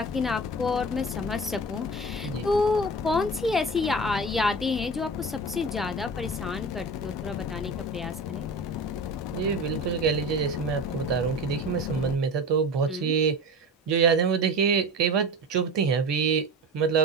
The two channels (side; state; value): both; normal; correlation 0.32